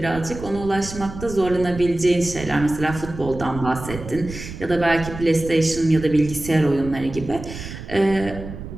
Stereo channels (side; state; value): right; noise; rumble, 11 dB below the sound